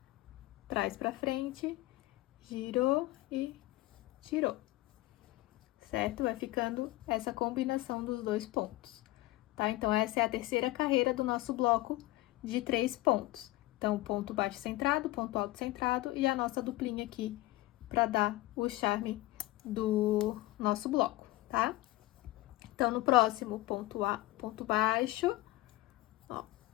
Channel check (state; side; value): quieter; right; 18.1 dB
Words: traz pra frente, girou e tirou, certo? Vai ficando essa combinação dos dois pontos, tá? Então, essa é a terceira carreira do nosso bloco de 3 pontos. Então, ponto baixo centrado, ponto alto centrado e a nossa duplinha aqui para dar o charme do nosso bloco, tá? Então, no próximo, ponto baixo, ó.